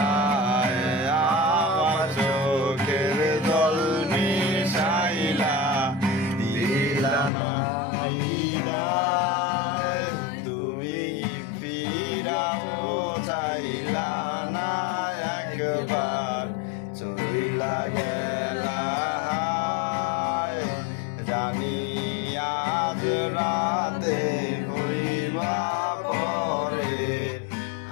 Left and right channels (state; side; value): drops out; right; at 7.3 s